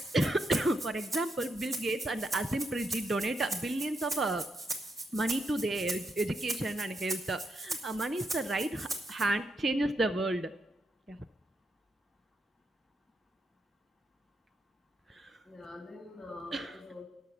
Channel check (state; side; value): normal; both; correlation 0.80